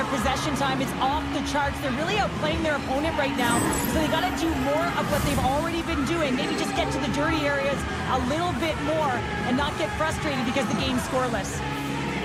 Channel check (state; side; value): identical; both; correlation 1.00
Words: possession time. It's off the charts. They're really outplaying their opponent right now. So they got to do more of what they've already been doing. Maybe just get to the dirty areas a little bit more and not get frustrated because the game's scoreless.